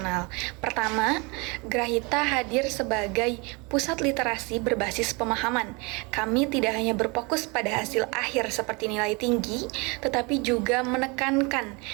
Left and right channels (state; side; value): quieter; left; 28.8 dB